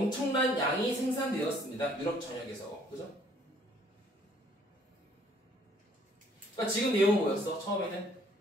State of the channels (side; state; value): both; normal; correlation 0.61